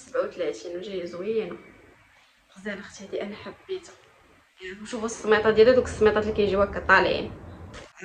وجايه زوينه، غزاله اختي. هذه انا حبيتها. شوفوا السميطه ديالها، دوك السميطات اللي كيجيو هكا طالعين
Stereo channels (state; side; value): identical; both; correlation 1.00